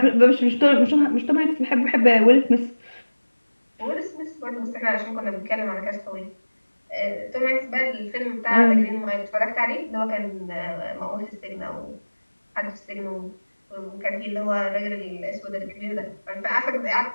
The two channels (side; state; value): both; inverted; correlation -1.00